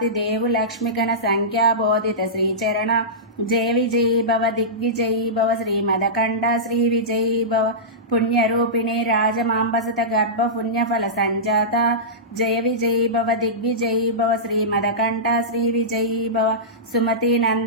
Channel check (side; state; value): both; normal; correlation -0.17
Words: దేవు లక్ష్మిగణ సంఖ్యాబోధిత శ్రీచరణ జయ విజయీ భవ దిగ్విజయీ భవ శ్రీమదకంఠ శ్రీ విజయీ భవ పుణ్యరూపిణి రాజమాంబసత గర్భ పుణ్యఫల సంజాత జయ విజయీ భవ దిగ్విజయీ భవ శ్రీమదకంఠ శ్రీ విజయీ భవ సుమతి